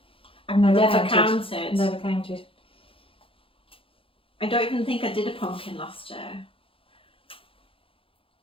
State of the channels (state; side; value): late; right; 0.26 ms